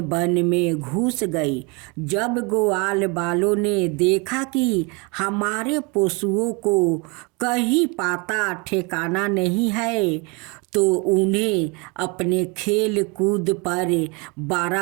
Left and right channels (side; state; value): left; quieter; 29.7 dB